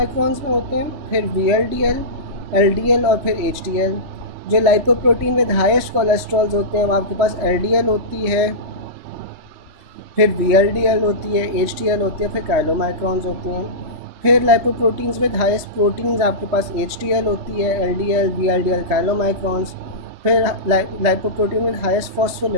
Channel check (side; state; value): left; late; 3.4 ms